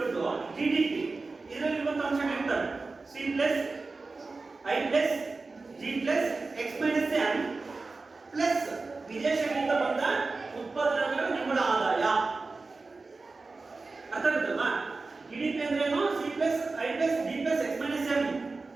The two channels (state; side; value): quieter; left; 3.8 dB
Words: to GDP. ಇದರಲ್ಲಿರುವಂತಹ ಅಂಶಗಳಿರ್ತವೆ C plus I plus G plus X minus M plus ವಿದೇಶಗಳಿಂದ ಬಂದ ಉತ್ಪಾದನೆಗಳ ನಿವ್ವಳ ಆದಾಯ. ಅರ್ಥ ಆಗುತ್ತಲ್ವಾ? GDP ಅಂದ್ರೇನು? C plus I plus G plus X minus M.